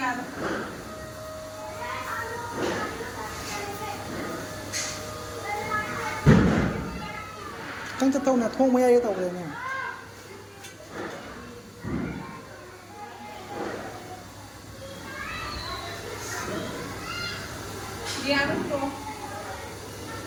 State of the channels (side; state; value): both; identical; correlation 1.00